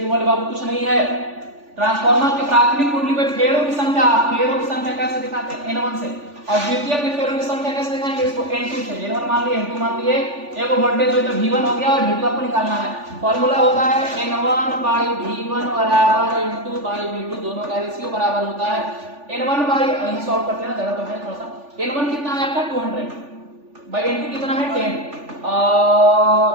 वाले बाबू कुछ नहीं है। ट्रांसफार्मर के प्राथमिक कुंडली में फेरों की संख्या कैसे दिखाते हैं, N1 से, और द्वितीयक में फेरों की संख्या कैसे दिखाएंगे, इसको N2 से। N1 मान लिए, N2 मान लिए, एक वोल्टेज हो तो V1 हो गया और V2 आपको निकालना है। फॉर्मूला होता है N1/V1 बराबर N2/V2, दोनों का रेशियो बराबर होता है N1 यही सॉल्व करते हैं, जगह तो है थोड़ा सा। N1 कितना है आपका 200/N2 कितना है 10,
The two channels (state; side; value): late; left; 3.4 ms